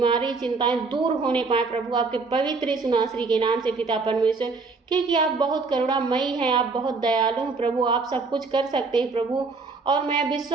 चिंताएं दूर होने पाए प्रभु आपके पवित्र यीशु नासरी के नाम से पिता परमेश्वर। क्योंकि आप बहुत करुणामयी हैं, आप बहुत दयालु हैं प्रभु, आप सब कुछ कर सकते हैं प्रभु। और मैं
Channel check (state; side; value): quieter; left; 4.2 dB